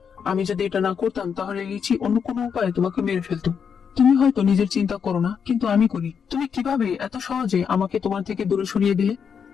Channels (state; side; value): quieter; right; 6.9 dB